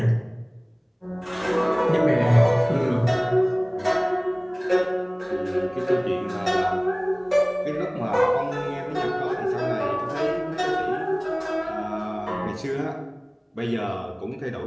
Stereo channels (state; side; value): identical; both; correlation 1.00